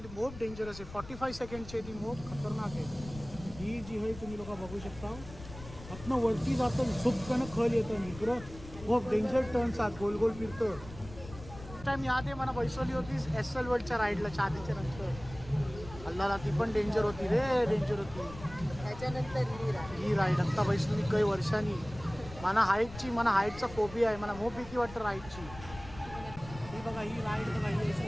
खूप डेंजरस आहे. 45 सेकंडची ती खूप खतरनाक आहे. ही जी आहे तुम्ही लोक बघू शकता, आतनं वरती जातं, झुपकन खल येतं, इकडं खूप डेंजर टर्न्स आहेत, गोल गोल फिरतं. टाइम याद आहे मला बसवली होती SL वर्ल्डच्या राईडला चादीच्या नंतर. अल्लाला ती पण डेंजर होती रे, डेंजर होती. त्याच्यानंतर ही राईड आता बसली काही वर्षांनी. मला हाईटचा फोबिया आहे, मला मोप भीती वाटतं राईडची. ही बघा ही राईड बघा, ही असं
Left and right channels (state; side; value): noise; left; rumble, 15 dB below the sound